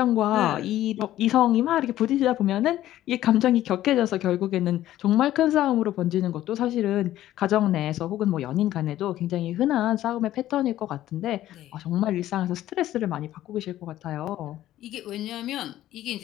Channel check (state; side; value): quieter; right; 13.6 dB